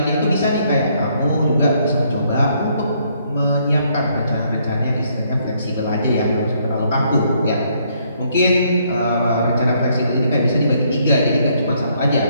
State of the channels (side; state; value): both; inverted; correlation -0.70